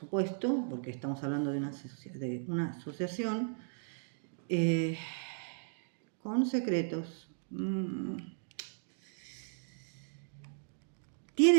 porque estamos hablando de una asociación con secretos.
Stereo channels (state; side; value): silent; left; digital silence